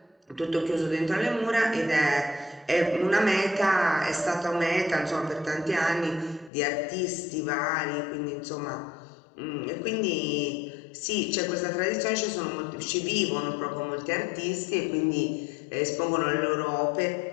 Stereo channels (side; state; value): right; drops out; at 6.5 s